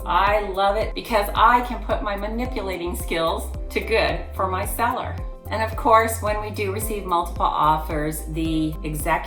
I love it because I can put my manipulating skills to good for my seller. And of course, when we do receive multiple offers, the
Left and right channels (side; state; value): both; identical; correlation 1.00